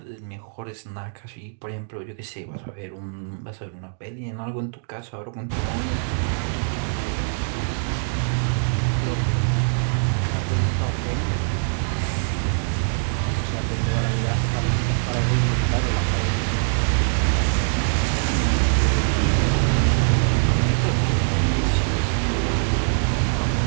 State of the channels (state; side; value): silent; left; digital silence